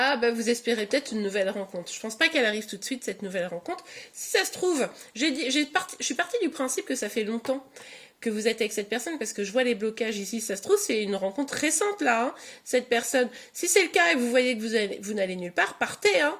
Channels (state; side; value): identical; both; correlation 1.00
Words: vous espérez peut-être une nouvelle rencontre. Je pense pas qu'elle arrive tout de suite cette nouvelle rencontre. Si ça se trouve, je suis partie du principe que ça fait longtemps que vous êtes avec cette personne parce que je vois les blocages ici. Ça se trouve c'est une rencontre récente là, hein, cette personne. Si c'est le cas et vous voyez que vous n'allez nulle part, partez. Hein.